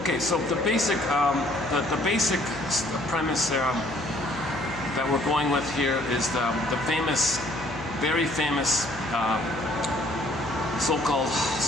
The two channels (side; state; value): left; noise; hum, 14 dB below the sound